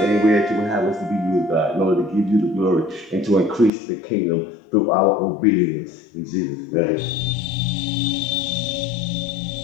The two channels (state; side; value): drops out; right; at 3.7 s